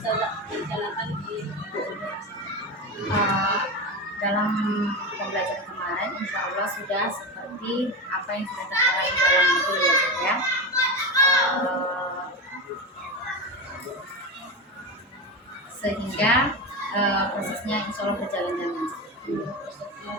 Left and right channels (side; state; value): both; normal; correlation 0.20